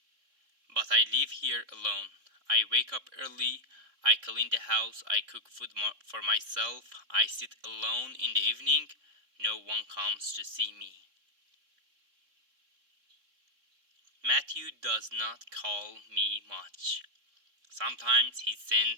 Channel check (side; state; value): left; late; 3.7 ms